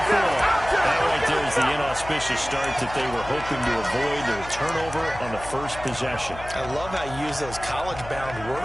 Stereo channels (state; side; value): noise; left; hum, 13 dB below the sound